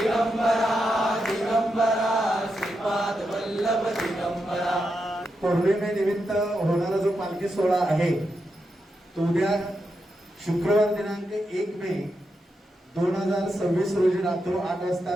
दिगंबरा दिगंबरा श्रीपाद वल्लभ दिगंबरा। पौर्णिमेनिमित्त होणारा जो पालखी सोहळा आहे तो उद्या शुक्रवार दिनांक 1 मे 2026 रोजी रात्री 8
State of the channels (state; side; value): normal; both; correlation 0.86